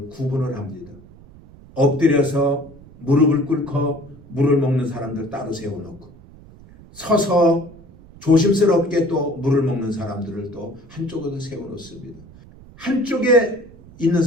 구분을 합니다. 엎드려서 무릎을 꿇고 물을 먹는 사람들 따로 세워놓고, 서서 조심스럽게 또 물을 먹는 사람들을 또 한쪽으로 세워놓습니다. 한쪽에 있는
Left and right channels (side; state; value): right; noise; rumble, 22 dB below the sound